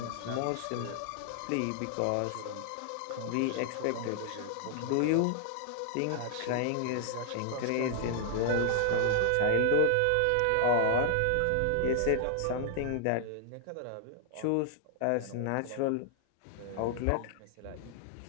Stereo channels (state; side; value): different; both; correlation 0.00